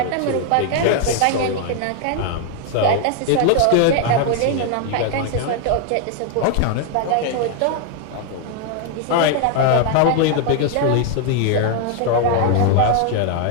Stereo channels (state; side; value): different; both; correlation 0.00